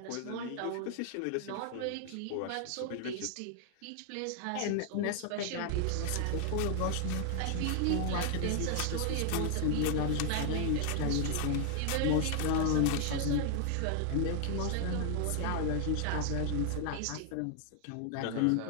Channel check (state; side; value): different; both; correlation 0.00